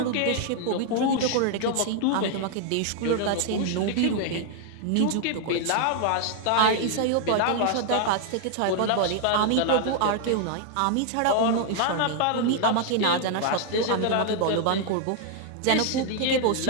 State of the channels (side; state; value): both; different; correlation 0.00